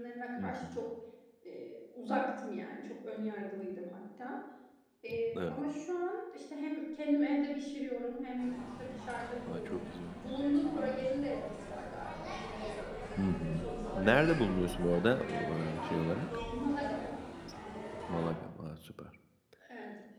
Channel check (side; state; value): both; identical; correlation 1.00